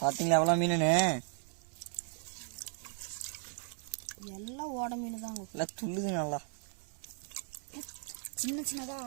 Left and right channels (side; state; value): left; silent; 54 dB below the other